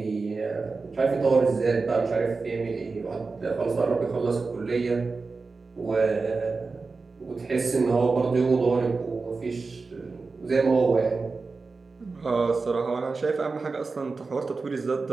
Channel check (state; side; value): quieter; left; 4.2 dB